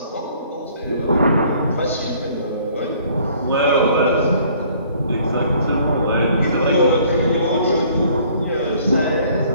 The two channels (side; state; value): both; inverted; correlation -0.58